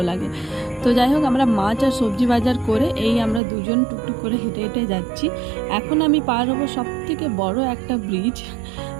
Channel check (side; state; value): left; drops out; at 3.4 s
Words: লাগে। তো যাই হোক, আমরা মাছ আর সবজি বাজার করে এই আমরা দুজন টুকটুক করে হেঁটে হেঁটে যাচ্ছি। এখন আমি পার হবো সবথেকে বড় একটা ব্রিজ।